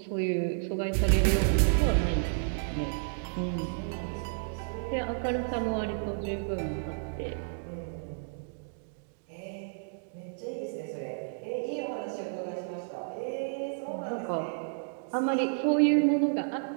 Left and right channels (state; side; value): silent; left; digital silence